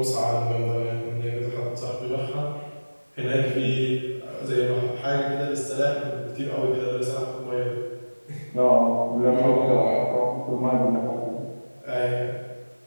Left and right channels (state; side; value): inverted; both; correlation -1.00